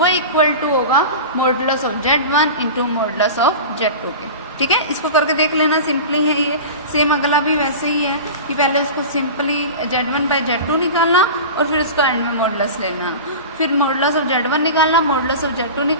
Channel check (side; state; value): both; inverted; correlation -0.31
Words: इक्वल टू होगा modulus of z1 into modulus of z2 के। ठीक है, इसको करके देख लेना, सिंपली है ये। सेम अगला भी वैसे ही है कि पहले उसको सिंपली z1 बाई z2 निकालना और फिर उसका एंड में मॉडुलस लेना, फिर मॉडुलस ऑफ z1 निकालना, मॉडुलस ऑफ z2